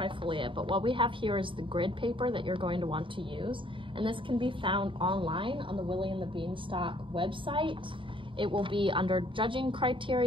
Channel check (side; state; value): left; late; 0.25 ms